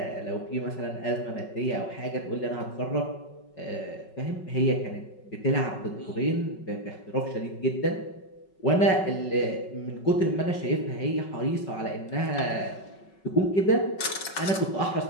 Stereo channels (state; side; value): late; right; 5.3 ms